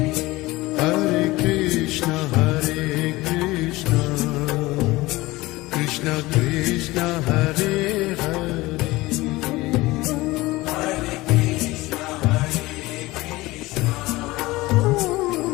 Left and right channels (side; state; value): right; quieter; 20.0 dB